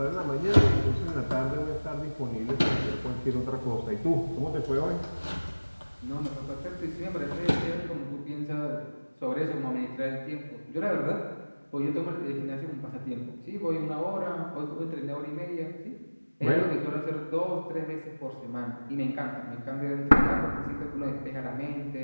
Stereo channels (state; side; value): inverted; both; correlation -1.00